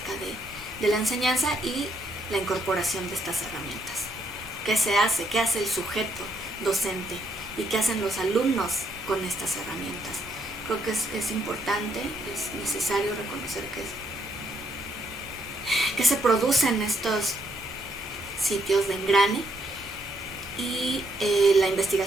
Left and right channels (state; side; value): normal; both; correlation 0.74